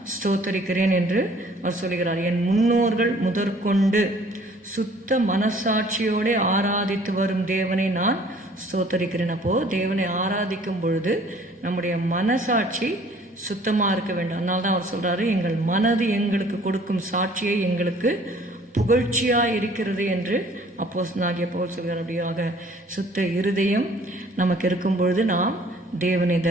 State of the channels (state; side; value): normal; both; correlation 0.55